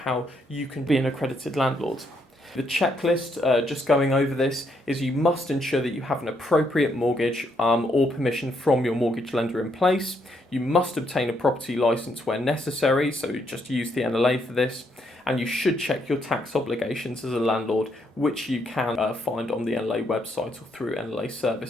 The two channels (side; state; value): both; normal; correlation 0.74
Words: you can be an accredited landlord. The checklist, just going over this, is you must ensure that you have an appropriate mortgage or permission from your mortgage lender in place. You must obtain a property licence where necessary, so just use the NLA for this. And you should check your tax obligations as a landlord, which you can find on the NLA website or through NLA